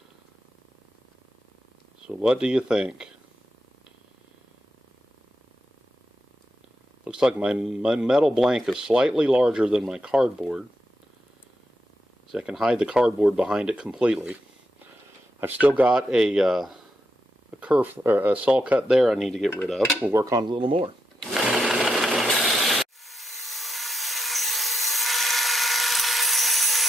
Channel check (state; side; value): normal; both; correlation 0.84